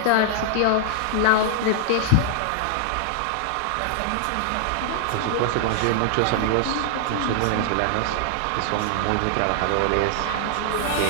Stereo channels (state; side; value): different; both; correlation 0.00